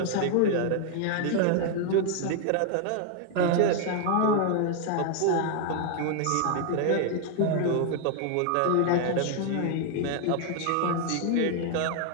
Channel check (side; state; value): both; different; correlation 0.00